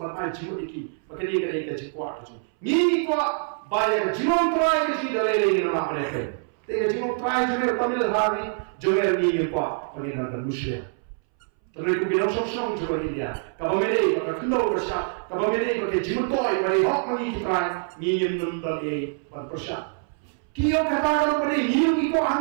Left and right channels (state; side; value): silent; left; 62 dB below the other